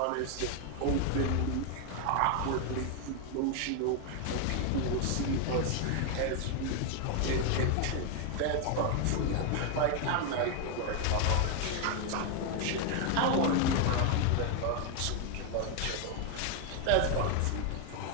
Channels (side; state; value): both; different; correlation 0.01